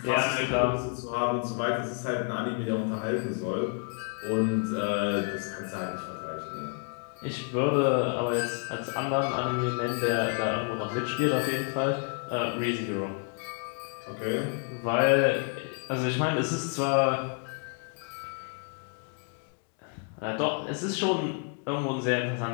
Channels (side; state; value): right; quieter; 39.8 dB